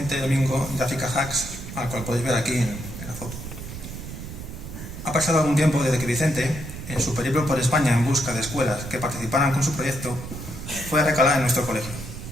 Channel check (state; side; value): noise; right; rumble, 10 dB below the sound